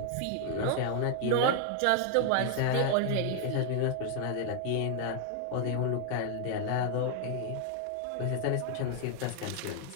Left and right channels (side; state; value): both; different; correlation 0.00